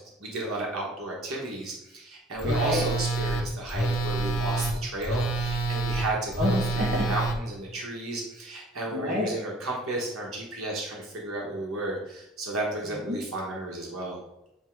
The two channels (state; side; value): normal; both; correlation 0.50